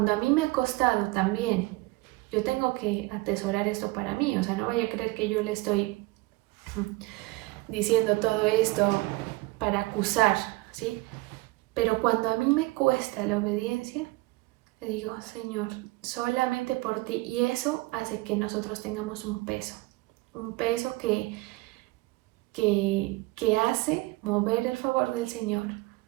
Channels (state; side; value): quieter; left; 22.0 dB